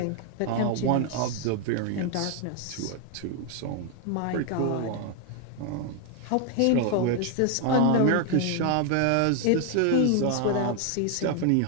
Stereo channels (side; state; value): both; different; correlation 0.01